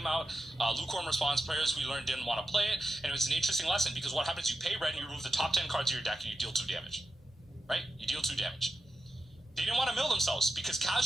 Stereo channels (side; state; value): both; normal; correlation 0.90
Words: out, lukewarm response players we learned didn't want to play it. And it was an interesting lesson because what happens, you pay red and you remove the top 10 cards of your deck and you deal 2 damage. Right? You deal 2 damage. They didn't want to mill themselves because